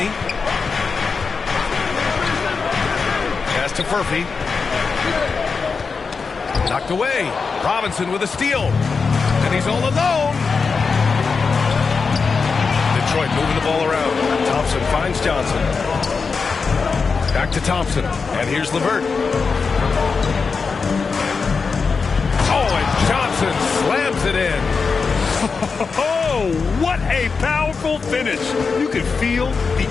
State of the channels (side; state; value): right; quieter; 5.0 dB